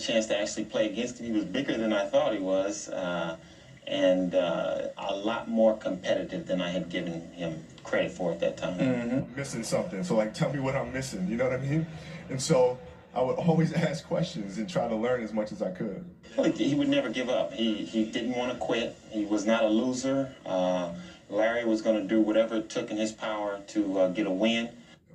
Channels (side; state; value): both; identical; correlation 1.00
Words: to actually play against him, he was bigger than I thought he was, and a lot more competitive than I had given him credit for at that time. I'm missing something. So like, tell me what I'm missing. You know what I mean? And so I would always ask questions and try to learn as much as I could. He would never give up. He didn't want to quit. He was not a loser. Larry was going to do whatever it took in his power to get a win.